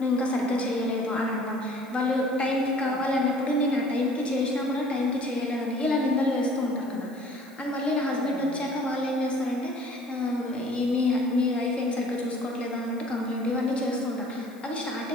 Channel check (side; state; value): left; noise; hiss, 27 dB below the sound